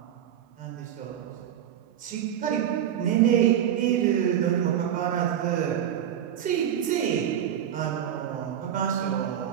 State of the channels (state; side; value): quieter; left; 10.1 dB